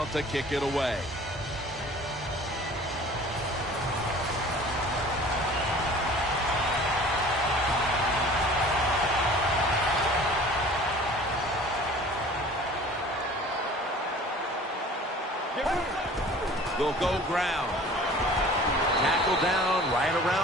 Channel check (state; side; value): normal; both; correlation 0.46